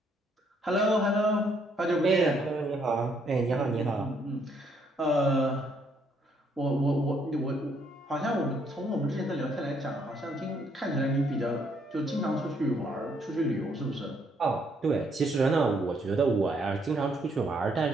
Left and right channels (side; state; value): both; normal; correlation 0.70